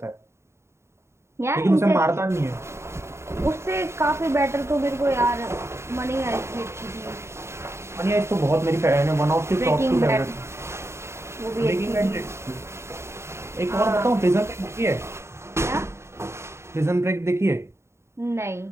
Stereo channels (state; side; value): late; left; 0.13 ms